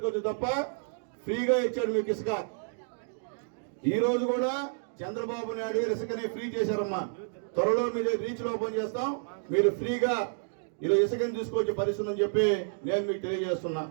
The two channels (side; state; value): left; silent; digital silence